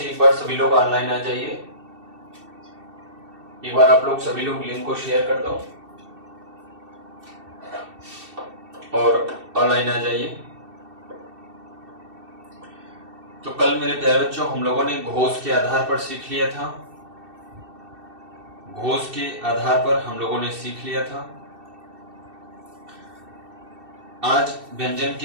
एक बार सभी लोग ऑनलाइन आ जाइए। एक बार आप लोग सभी लोग लिंक को शेयर कर दो और ऑनलाइन आ जाइए। तो कल मेरे प्यारे बच्चों हम लोगों ने घोष के आधार पर सीख लिया था। घोष के आधार पर हम लोगों ने सीख लिया था। आज व्यंजन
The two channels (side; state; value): left; late; 2.7 ms